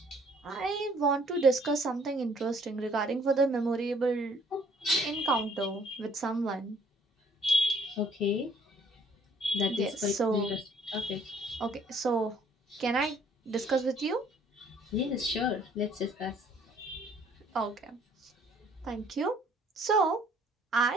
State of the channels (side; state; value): both; normal; correlation 0.60